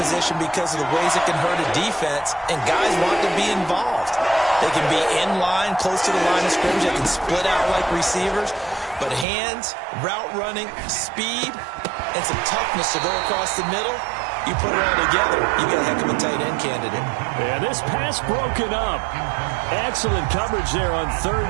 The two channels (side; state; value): left; drops out; at 9.2 s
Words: because of the ways it can hurt a defense, and guys want to be involved. They can be in line, close to the line of scrimmage. They can split out like receivers. But hands, route running, speed, and some toughness to go across the middle, you put it all together, you got a heck of a tight end candidate. Yeah, this pass broken up. Excellent coverage there on